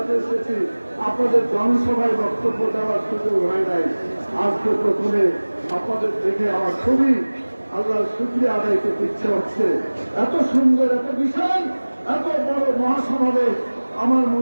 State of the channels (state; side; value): inverted; both; correlation -1.00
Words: এসেছি, আপনাদের জনসভায় বক্তব্য দেওয়ার সুযোগ হয় নাই। আজকে প্রথমে আপনাদের দেখে আমার খুবই আল্লাহর শুকরিয়া আদায় করতে ইচ্ছে হচ্ছে। এত সুন্দর, এত বিশাল, এত বড় মহাসমাবেশ আমার